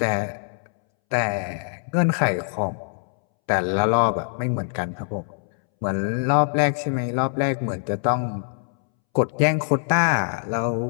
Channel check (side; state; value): right; silent; 63 dB below the other